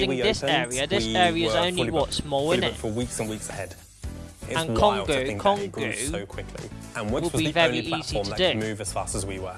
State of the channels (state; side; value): identical; both; correlation 1.00